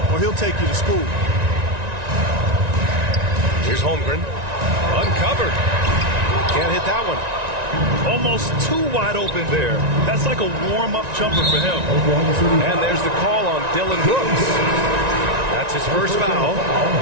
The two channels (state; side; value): late; left; 1.9 ms